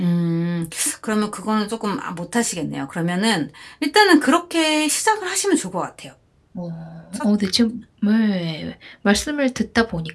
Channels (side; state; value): both; identical; correlation 1.00